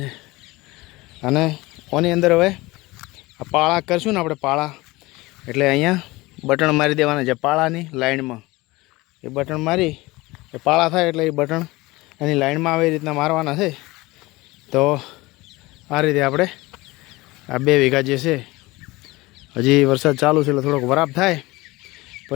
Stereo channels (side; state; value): right; quieter; 21.2 dB